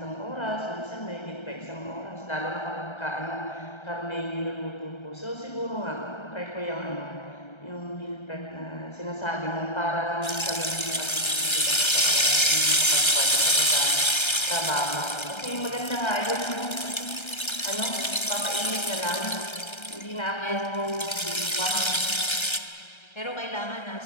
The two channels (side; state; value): right; late; 1.3 ms